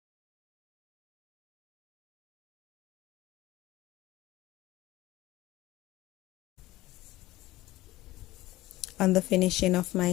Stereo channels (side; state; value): right; quieter; 17.5 dB